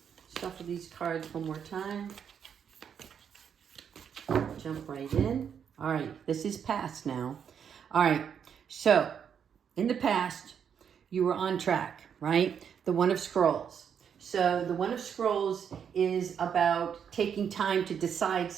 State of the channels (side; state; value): left; quieter; 7.7 dB